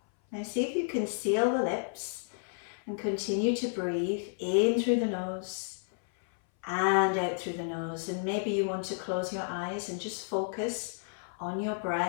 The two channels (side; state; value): right; silent; 57 dB below the other